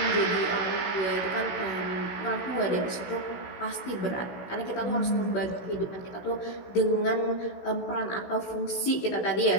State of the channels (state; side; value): late; right; 16 ms